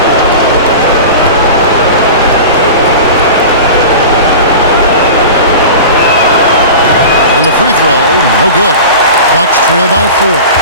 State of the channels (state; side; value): inverted; both; correlation -0.33